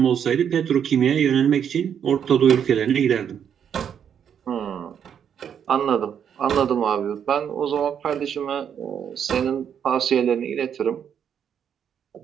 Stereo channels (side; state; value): left; quieter; 8.3 dB